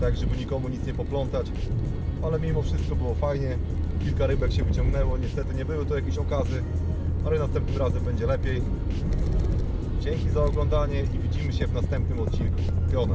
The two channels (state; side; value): identical; both; correlation 1.00